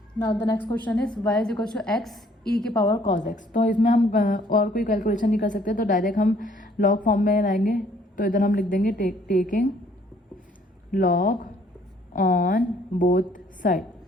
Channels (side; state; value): both; normal; correlation 0.62